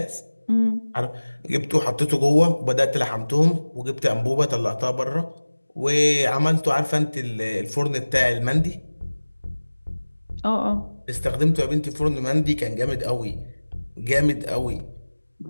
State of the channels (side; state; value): both; inverted; correlation -1.00